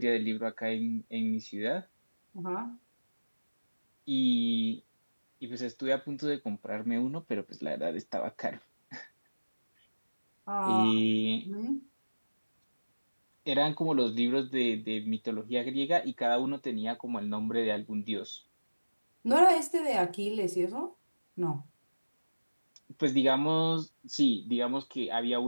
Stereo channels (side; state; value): both; inverted; correlation -1.00